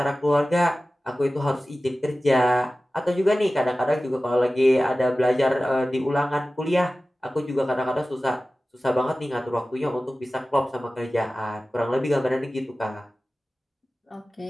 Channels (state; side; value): normal; both; correlation 0.96